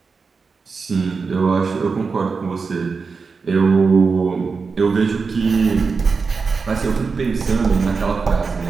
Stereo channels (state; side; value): quieter; left; 4.8 dB